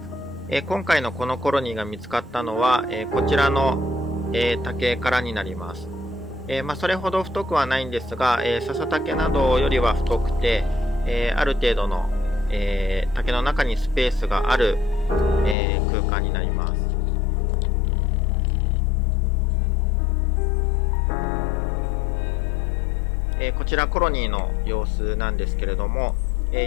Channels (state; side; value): drops out; right; at 15.6 s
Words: 今回のこのコロニーが見つかったのは、こちらの、竹からになります。それほど太くはないんですが、笹竹などよりは太くて、ある程度の、竹の中にスペースがある、空間になります。こちらコロニーの様子なんですけれども、